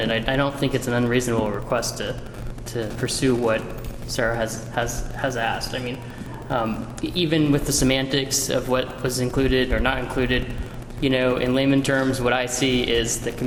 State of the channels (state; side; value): identical; both; correlation 1.00